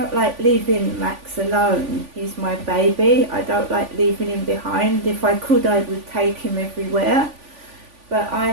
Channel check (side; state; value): left; late; 3.5 ms